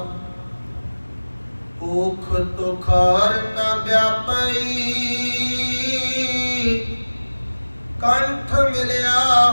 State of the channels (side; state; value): both; inverted; correlation -1.00